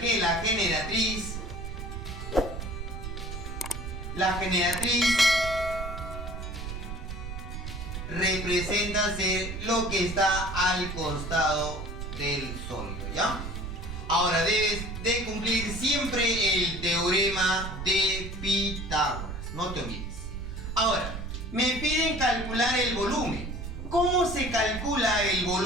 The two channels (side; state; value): right; noise; rumble, 7 dB below the sound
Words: que la generatriz representa ser lo que está al costado del sólido, ¿ya? Ahora debes de cumplir siempre el teorema de Pitágoras, no te olvides. Ahora, me piden calcular el volumen. ¿Cómo se calcula el